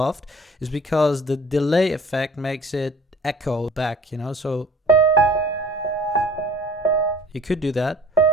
is because the delay effect makes it echo back, you know, so you could do that.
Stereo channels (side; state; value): both; normal; correlation 0.48